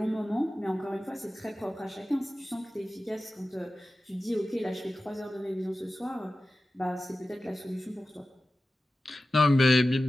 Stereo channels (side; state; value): both; normal; correlation 0.95